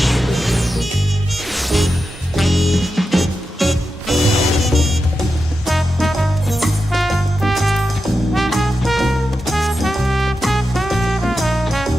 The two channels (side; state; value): both; normal; correlation 0.90